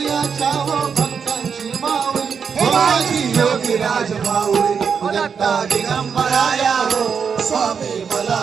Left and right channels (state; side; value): quieter; left; 6.4 dB